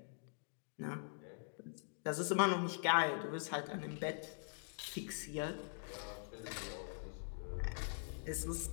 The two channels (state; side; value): silent; right; digital silence